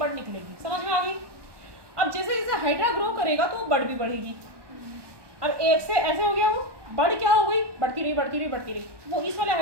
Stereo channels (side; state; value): left; late; 1.2 ms